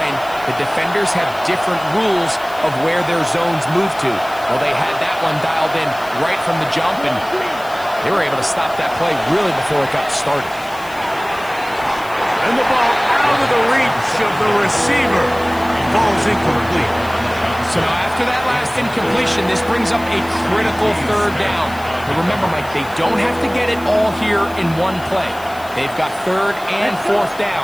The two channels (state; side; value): noise; left; hiss, 20 dB below the sound